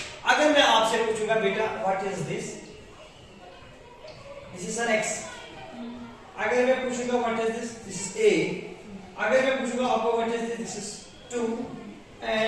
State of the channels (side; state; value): both; identical; correlation 1.00